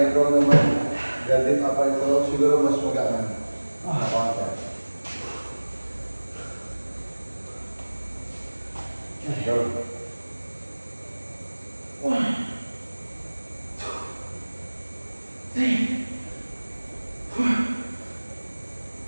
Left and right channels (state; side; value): inverted; both; correlation -1.00